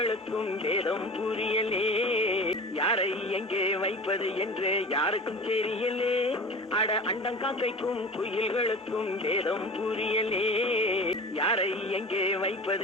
வேதம் புரியலே. யாரை எங்கே வைப்பது என்று யாருக்கும் தெரியலே. அட அண்டங்காக்கைக்கும் குயில்களுக்கும் வேதம் புரியலே. யாரை எங்கே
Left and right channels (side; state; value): both; normal; correlation 0.36